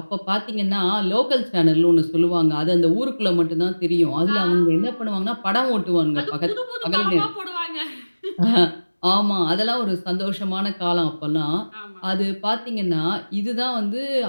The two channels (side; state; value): both; inverted; correlation -1.00